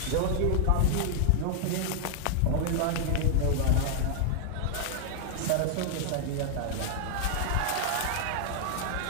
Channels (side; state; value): both; different; correlation -0.01